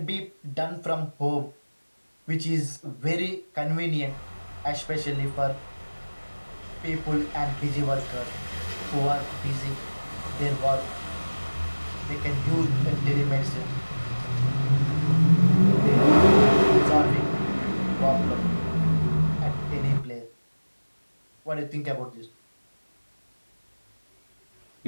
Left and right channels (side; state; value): both; inverted; correlation -1.00